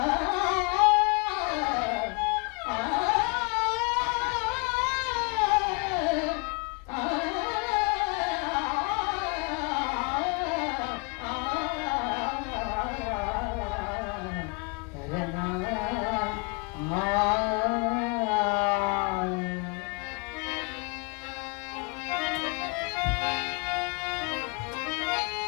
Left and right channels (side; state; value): right; quieter; 31.8 dB